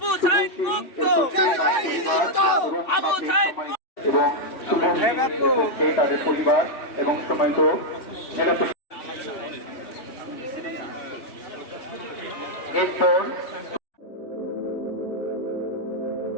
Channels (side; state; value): right; late; 3.8 ms